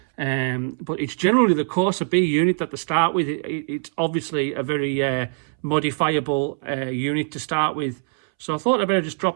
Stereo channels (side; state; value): left; silent; 64 dB below the other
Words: But it's generally the Corsa B unit that they start with. It's obviously a very modifiable unit to start with. So I thought I'd better just